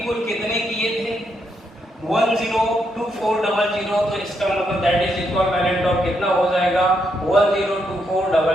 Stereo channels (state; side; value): normal; both; correlation 0.78